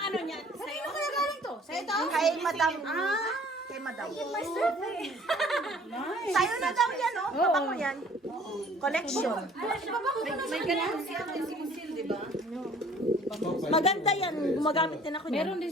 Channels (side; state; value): both; normal; correlation 0.53